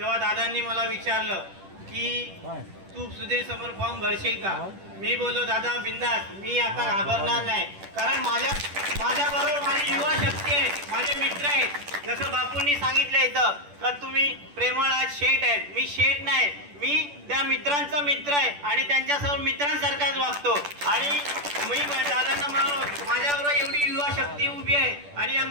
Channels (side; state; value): left; late; 10 ms